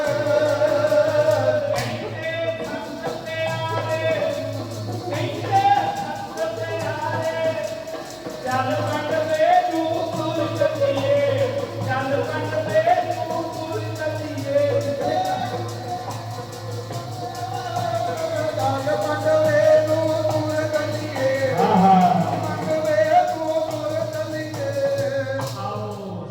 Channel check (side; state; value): right; noise; hum, 30 dB below the sound